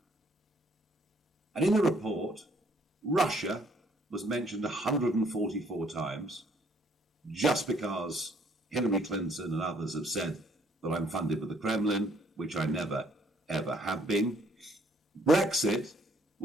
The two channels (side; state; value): both; normal; correlation 0.65